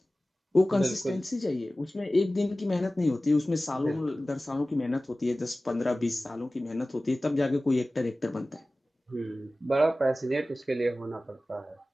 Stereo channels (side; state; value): both; normal; correlation 0.97